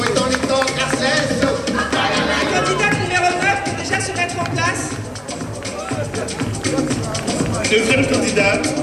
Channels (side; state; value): both; identical; correlation 1.00